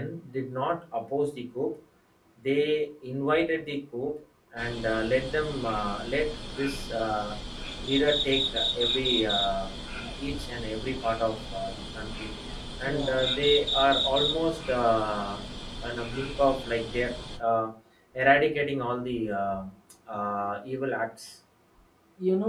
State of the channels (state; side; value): identical; both; correlation 1.00